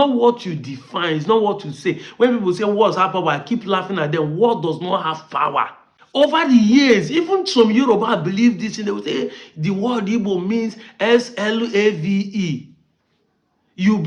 what you define, it's not what you say. When people say words have power, I keep laughing at them. Word does not have power. Over the years, even some Yoruba believe this, and they will say the word Igbo means S-L-A-V-E. You'll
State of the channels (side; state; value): both; identical; correlation 1.00